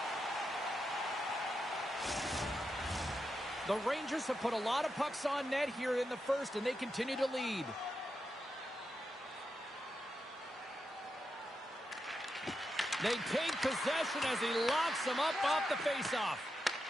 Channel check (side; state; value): both; normal; correlation 0.87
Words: The Rangers have put a lot of pucks on net here in the first, and they continue to lead. They take possession as he locks them up off the faceoff.